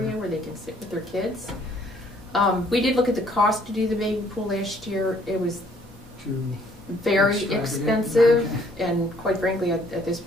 where they can sit with their kids. We did look at the cost to do the baby pool last year. It was To very extravagant. expensive, Okay. and quite frankly, at this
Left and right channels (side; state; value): both; normal; correlation 0.63